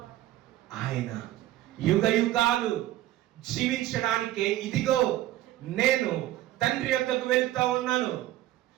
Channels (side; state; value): left; quieter; 14.6 dB